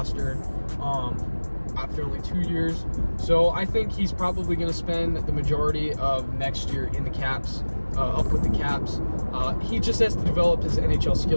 after only 2 years. So I think he's probably going to spend the majority of next year in the Caps, up with the Caps. He just has to develop his NHL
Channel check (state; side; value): inverted; both; correlation -1.00